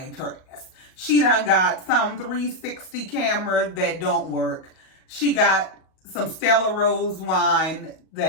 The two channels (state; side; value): late; right; 38 ms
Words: her ass. She done got some 360 camera that don't work. She got some Stella Rose wine